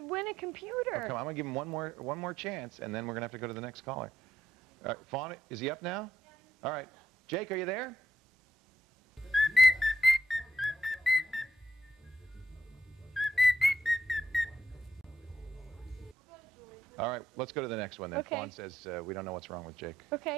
win a computer. Oh, come on, I'm going to give him one more chance, and then we're going to have to go to the next caller. All right, Fawn, is he up now? All right. Jake, are you there? All right, let's go to the next one then. Okay. Fawn says we don't know what's wrong with Jake.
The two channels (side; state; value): both; normal; correlation 0.78